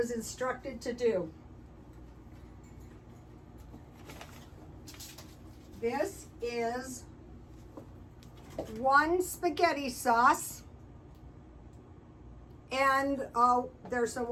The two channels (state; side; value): identical; both; correlation 1.00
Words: instructed to do. This is 1 spaghetti sauce. And there's some